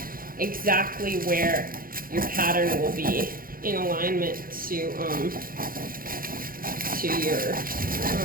exactly where your pattern will be in alignment to your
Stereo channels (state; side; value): late; left; 0.42 ms